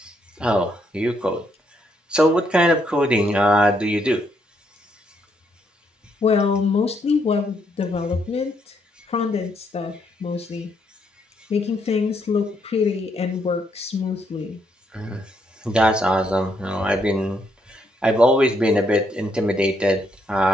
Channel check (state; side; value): normal; both; correlation 0.74